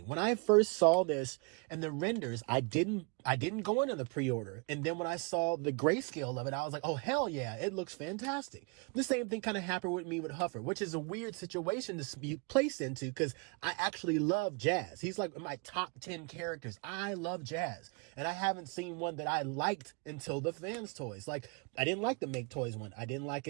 When I first saw this in the renders, I didn't go into the pre-order. And then when I saw the grayscale of it, I was like, oh, hell yeah, it looks fantastic. The same thing kind of happened with me with Huffer, which is a weird situation to be placed into because I actually love jazz. He's like my top 10 characters. I love jazz. And I haven't seen one that I liked until the Fanstoys. Like, I didn't like the Make Toys one. I didn't like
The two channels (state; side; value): quieter; left; 32.1 dB